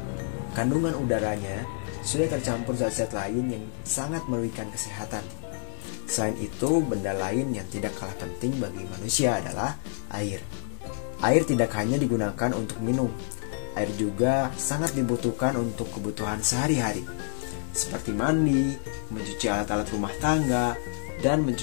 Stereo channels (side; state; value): right; silent; 59 dB below the other